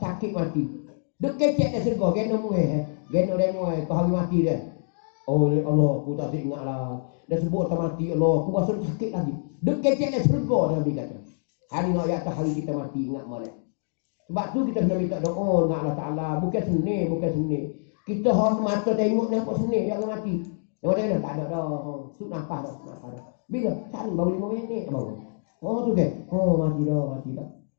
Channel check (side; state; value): right; silent; digital silence